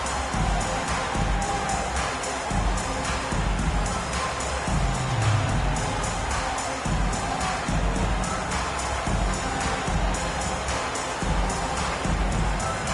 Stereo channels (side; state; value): both; identical; correlation 1.00